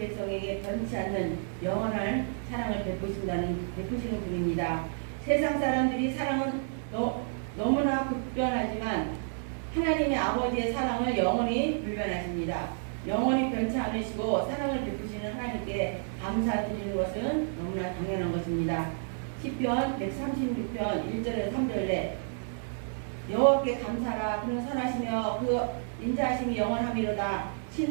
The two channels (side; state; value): left; silent; digital silence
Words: 변치 않는 영원한 사랑을 베푸시는 분입니다. 세상 사람들이 사랑은 너무나 급변하지만 하나님의 아버지의 사랑을 영원히 불변하십니다. 영원히 변치 않으시고 사랑을 베푸시는 하나님께 감사드리는 것은 너무나 당연한 것입니다. 시편 136편 1절에서 3절에 여호와께 감사라 그는 선하시며 그 인자하심이 영원함이로다.